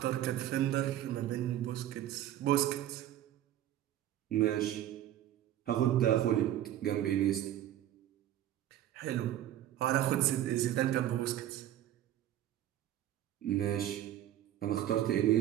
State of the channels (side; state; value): left; quieter; 12.4 dB